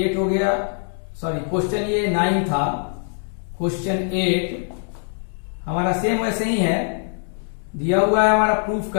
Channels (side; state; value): right; silent; 64 dB below the other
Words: हो गया सॉरी क्वेश्चन ये 9 था। क्वेश्चन 8 हमारा सेम वैसे ही है, दिया हुआ है हमारा प्रूफ